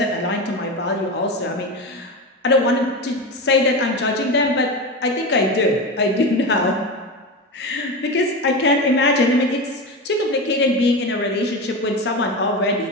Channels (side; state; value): both; normal; correlation 0.22